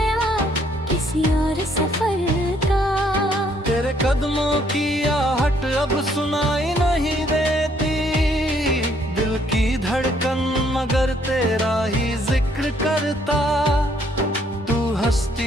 किसी और सफर का। तेरे कदमों की आहट अब सुनाई नहीं देती, दिल की धड़कन मगर तेरा ही जिक्र करता। तू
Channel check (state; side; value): normal; both; correlation 0.67